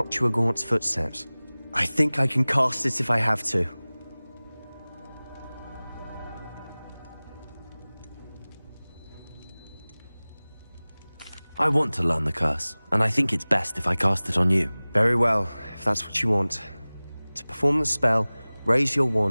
Gaunt's footsteps. I think I can cast it if I have to. I want to learn the curse, and I think it's best if I cast it on you. Very well, if that's what you want. To perform the spell, raise your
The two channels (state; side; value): inverted; both; correlation -0.99